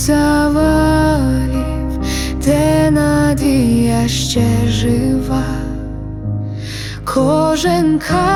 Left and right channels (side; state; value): both; identical; correlation 1.00